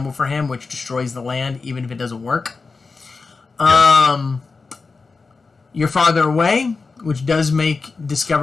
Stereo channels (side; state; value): right; quieter; 4.3 dB